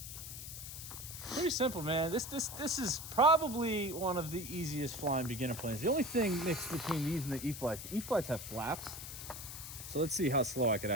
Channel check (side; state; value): left; noise; hiss, 9 dB below the sound